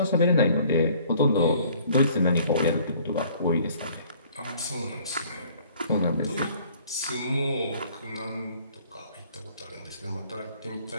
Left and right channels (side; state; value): both; inverted; correlation -0.56